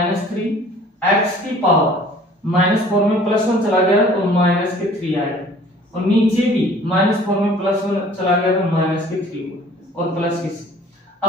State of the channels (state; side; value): normal; both; correlation 0.51